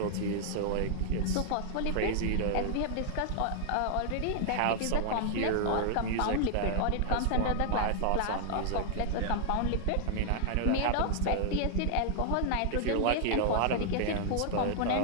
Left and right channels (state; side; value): different; both; correlation -0.01